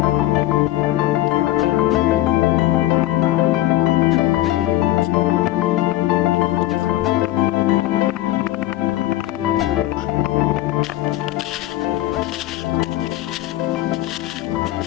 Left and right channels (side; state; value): right; quieter; 15.2 dB